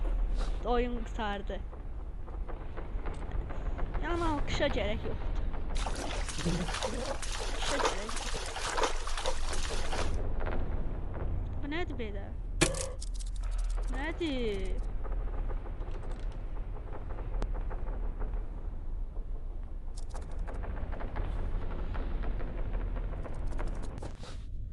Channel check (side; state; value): both; identical; correlation 1.00